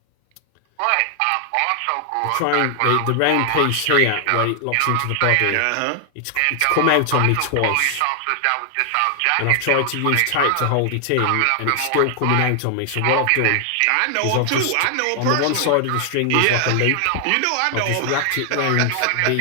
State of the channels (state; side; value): different; both; correlation 0.00